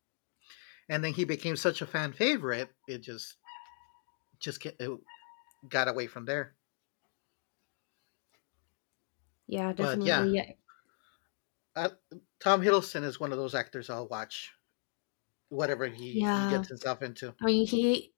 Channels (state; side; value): silent; right; digital silence